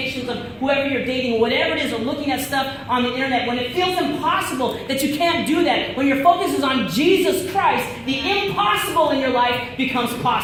of whoever you're dating, whatever it is, or looking at stuff on the internet, when it feels impossible that you can't do that, when your focus is on Jesus Christ, the impossible in your life becomes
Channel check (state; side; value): identical; both; correlation 1.00